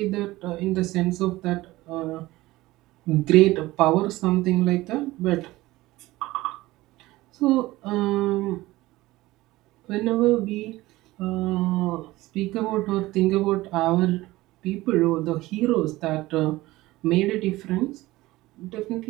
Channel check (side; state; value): left; quieter; 18.5 dB